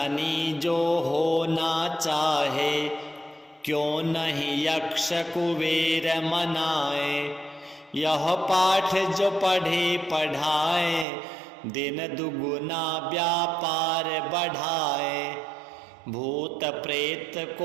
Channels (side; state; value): left; drops out; at 11.1 s